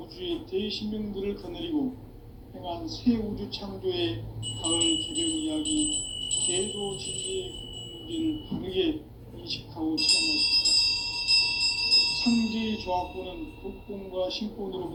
대신명들을 거느리고 행한 새 우주 창조의 가을 개변 이야기, 계도 진리의 궁극 문제를 바르게 인식하고 체험할 수 있다. 상제의 조화권은 독권과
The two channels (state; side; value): identical; both; correlation 1.00